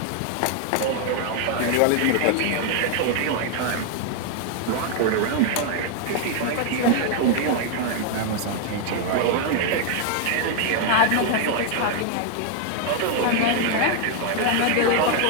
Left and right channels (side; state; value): both; different; correlation 0.00